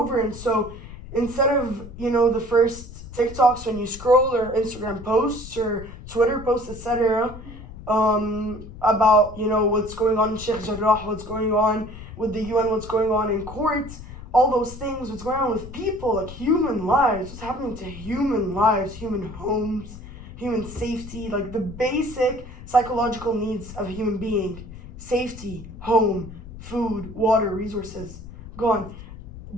And so, instead of, you know, the first TikToks when you scroll or Instagram posts or Twitter posts, etc., about, you know, what's going on in Sheikh Jarrah, what's going on with the UN, what's going on in court, all those things, what's going on with people, like human lives, what's happening to human lives, human homes, human safety, like the basic psychological needs of a human being, safety, home, food, water, resources, gone.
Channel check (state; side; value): noise; left; rumble, 14 dB below the sound